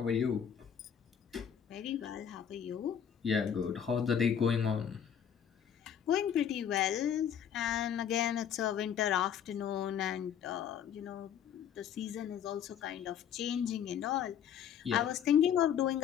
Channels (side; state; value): right; quieter; 8.6 dB